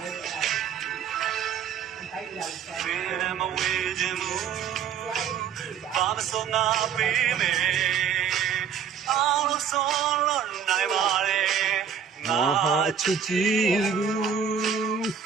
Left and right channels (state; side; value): quieter; left; 7.5 dB